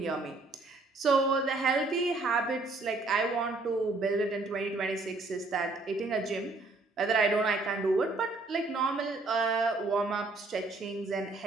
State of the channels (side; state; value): left; quieter; 3.3 dB